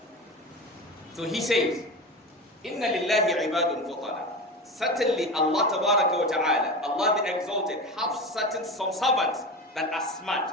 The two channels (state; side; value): normal; both; correlation 0.26